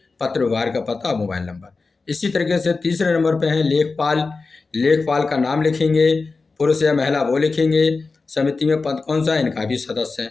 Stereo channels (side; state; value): right; quieter; 4.1 dB